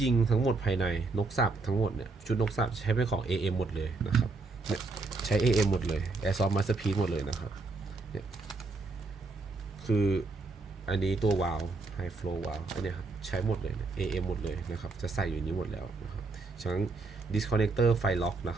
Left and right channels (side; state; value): left; quieter; 3.7 dB